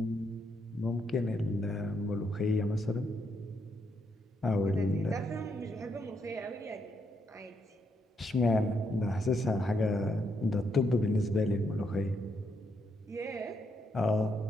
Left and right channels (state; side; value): normal; both; correlation 0.77